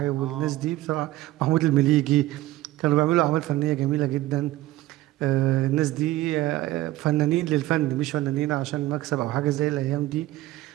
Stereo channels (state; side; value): quieter; left; 16.4 dB